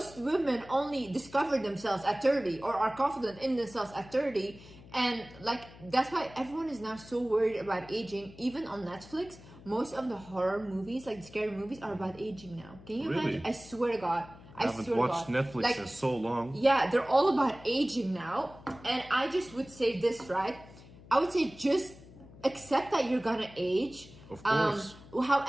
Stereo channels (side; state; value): left; noise; hum, 20 dB below the sound